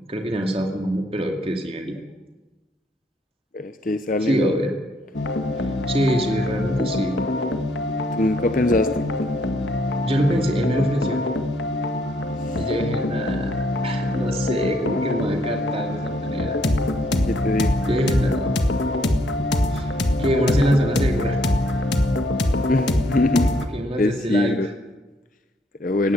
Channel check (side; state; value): both; normal; correlation 0.69